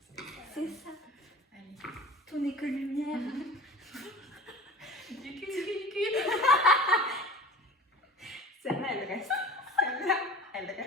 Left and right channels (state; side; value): normal; both; correlation 0.40